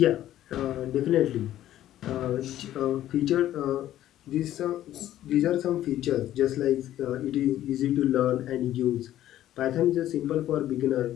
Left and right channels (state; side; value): quieter; right; 12.9 dB